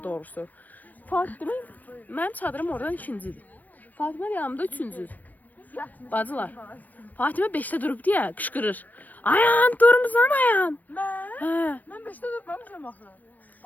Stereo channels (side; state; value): right; late; 0.084 ms